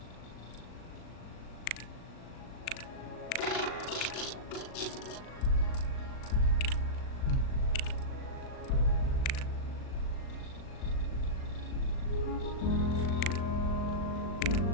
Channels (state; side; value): late; right; 38 ms